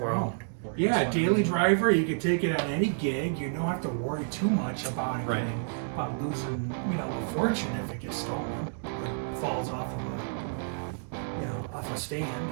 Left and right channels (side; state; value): left; silent; digital silence